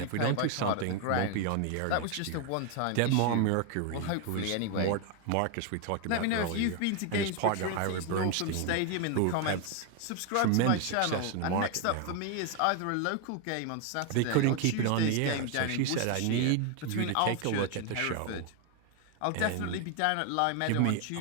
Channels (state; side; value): different; both; correlation 0.01